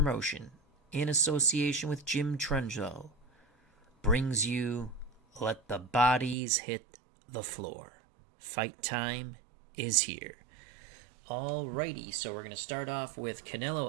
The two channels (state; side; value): drops out; left; at 6.4 s